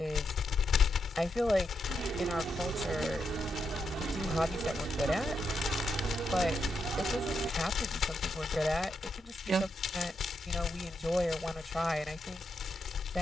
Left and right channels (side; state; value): both; normal; correlation 0.83